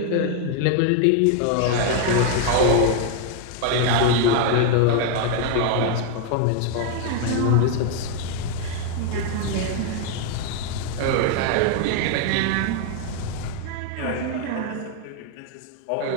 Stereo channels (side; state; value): both; different; correlation 0.00